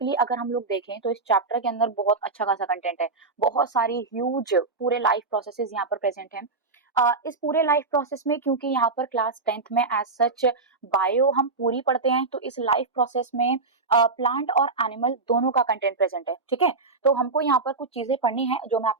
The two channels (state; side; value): quieter; left; 3.9 dB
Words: अगर हम लोग देखें तो इस चैप्टर के अंदर बहुत अच्छा खासा कंटेंट है। बहुत सारी ह्यूज पूरे लाइफ प्रोसेसेस यहाँ पर प्रेजेंट हैं। इस पूरे लाइफ प्रोसेस में, क्योंकि यहाँ पर क्लास 10th में एज सच बायो हम पूरी पढ़ते हैं, तो इस लाइफ प्रोसेस में प्लांट और एनिमल दोनों का कंटेंट प्रेजेंट है। ठीक है, तो हमको यहाँ पर कुछ चीजें पढ़नी है जो मैं